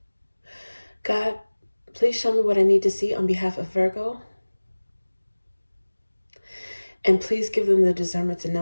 God, please show me what I need to see on behalf of Virgo. And please give them the discernment to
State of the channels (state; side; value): inverted; both; correlation -1.00